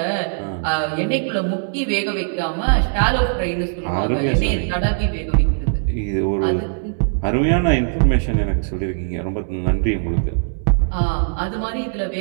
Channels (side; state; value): left; silent; digital silence